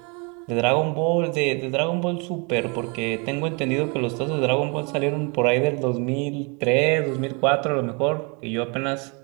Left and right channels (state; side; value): quieter; left; 32.3 dB